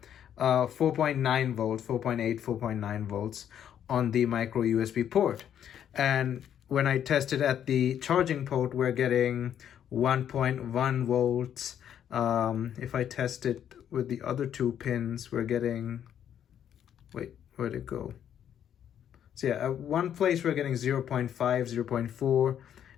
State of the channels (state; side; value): quieter; right; 9.6 dB